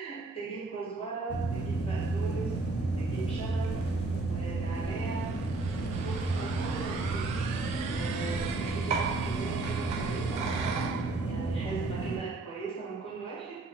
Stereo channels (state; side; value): quieter; left; 3.2 dB